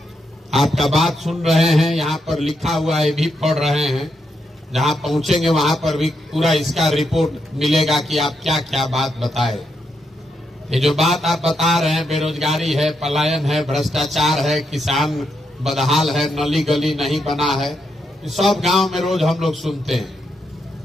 आपका बात सुन रहे हैं, यहाँ पर लिखा हुआ है भी पढ़ रहे हैं। जहाँ पहुंचेंगे वहां पर भी पूरा इसका रिपोर्ट मिलेगा कि आप क्या क्या बात बताए। ये जो बात आप बता रहे हैं, बेरोजगारी है, पलायन है, भ्रष्टाचार है, किसान बदहाल है, नली गली नहीं बना है, सब गांव में रोज हम लोग सुनते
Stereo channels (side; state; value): both; normal; correlation 0.81